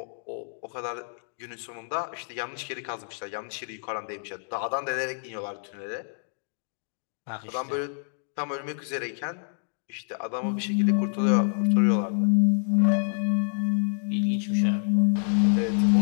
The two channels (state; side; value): silent; right; digital silence